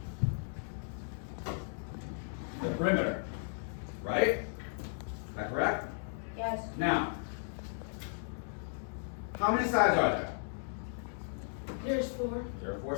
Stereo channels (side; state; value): right; silent; digital silence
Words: the perimeter, right? Is that correct? Yes. Now, how many sides are there? There's 4. There are 4